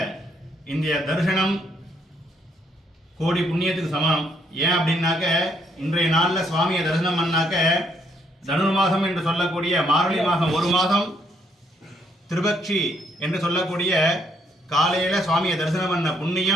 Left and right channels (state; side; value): normal; both; correlation 0.71